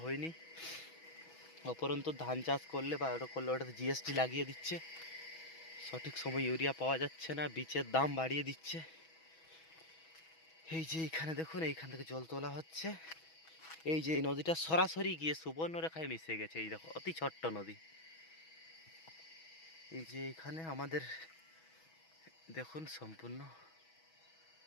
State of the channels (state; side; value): late; right; 6.2 ms